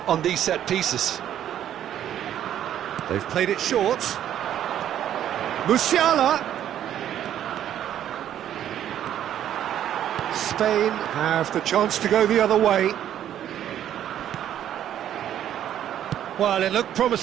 these set pieces. They've played it short. Musiala. Spain have the chance to go the other way. Well, it looked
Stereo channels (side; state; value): left; quieter; 10.8 dB